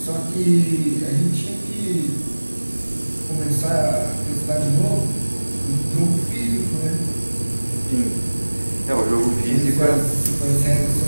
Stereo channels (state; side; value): inverted; both; correlation -1.00